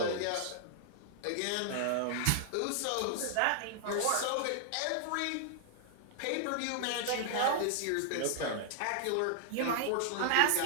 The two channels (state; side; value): different; both; correlation -0.01